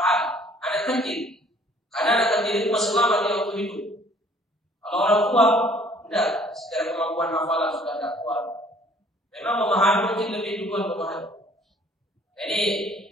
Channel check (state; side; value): normal; both; correlation 0.57